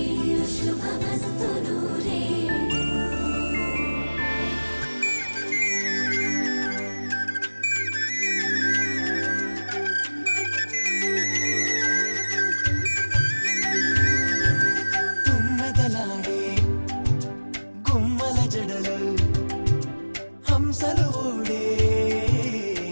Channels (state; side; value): inverted; both; correlation -1.00